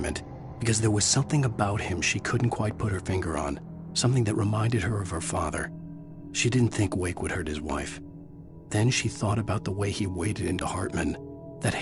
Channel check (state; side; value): identical; both; correlation 1.00